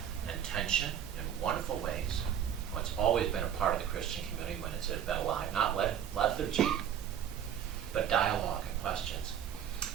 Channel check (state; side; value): quieter; left; 9.3 dB